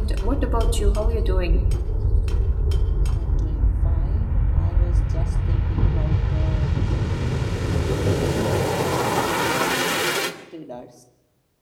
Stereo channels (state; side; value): identical; both; correlation 1.00